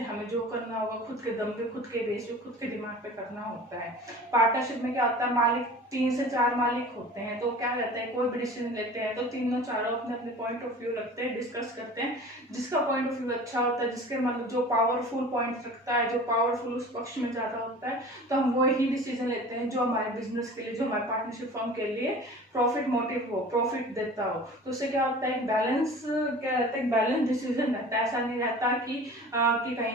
हमें जो करना होगा खुद के दम पे, खुद के बेस पे, खुद के दिमाग पे करना होता है। पार्टनरशिप में क्या होता है, मालिक 3 से 4 मालिक होते हैं, तो क्या रहता है, कोई भी डिसीजन लेते हैं तो तीनों चारों अपने अपने पॉइंट ऑफ व्यू रखते हैं, डिस्कस करते हैं। जिसका पॉइंट ऑफ व्यू अच्छा होता है, जिसके मतलब जो पावरफुल पॉइंट रखता है, जो पावरफुल उस पक्ष में ज्यादा होता है, तो हम वो ही डिसीजन लेते हैं जो हमारे बिजनेस के लिए, जो हमारे पार्टनरशिप फर्म के लिए प्रॉफिट मोटिव हो, प्रॉफिट देता हो। तो उससे क्या होता है, एक बैलेंस, क्या रहता है, एक बैलेंस डिसीजन रहता है। ऐसा नहीं रहता कि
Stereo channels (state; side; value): normal; both; correlation 0.40